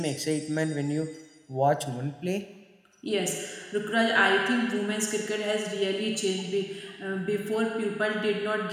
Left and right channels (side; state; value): both; identical; correlation 1.00